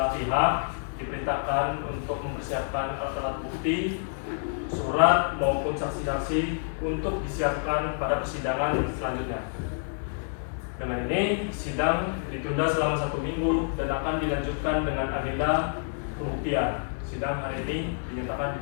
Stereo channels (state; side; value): silent; right; 59 dB below the other